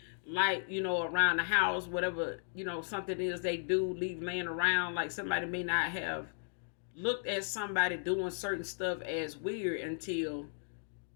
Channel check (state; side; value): silent; right; digital silence